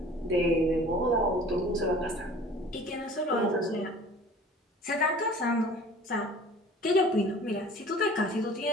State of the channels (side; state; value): both; normal; correlation 0.46